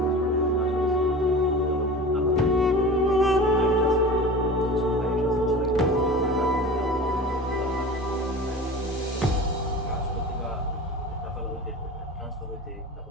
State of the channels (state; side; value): normal; both; correlation 0.34